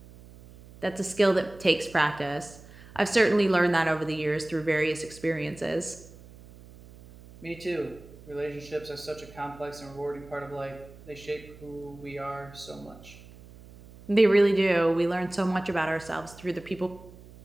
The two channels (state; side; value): noise; right; hum, 20 dB below the sound